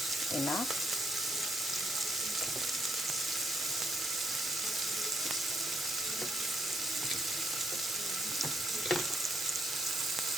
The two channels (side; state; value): both; normal; correlation 0.75